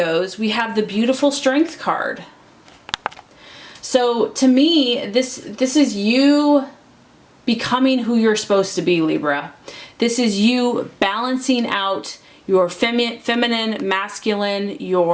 we have the beautiful Strength card. So to me, this is you becoming who you're supposed to be, Libra. This is you balancing out your feminine, masculine,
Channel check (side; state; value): both; identical; correlation 1.00